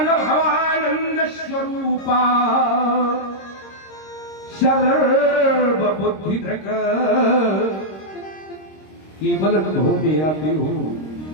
स्वरूपा सर्वबुद्धि धृक। केवल अनुभव में आती हूं।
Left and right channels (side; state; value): right; late; 26 ms